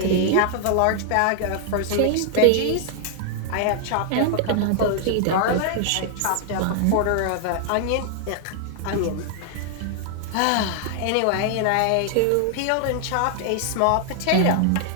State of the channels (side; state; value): both; different; correlation 0.00